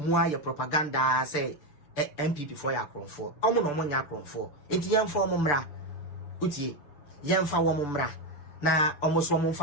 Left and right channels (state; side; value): late; right; 6.8 ms